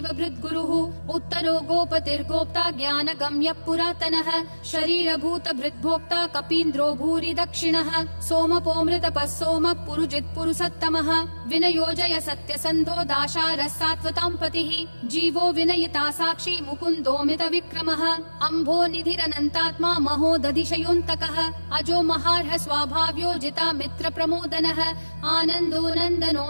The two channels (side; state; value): both; inverted; correlation -1.00